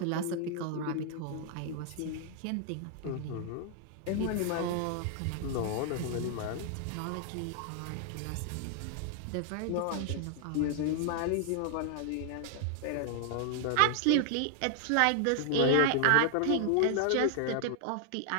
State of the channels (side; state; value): both; different; correlation 0.00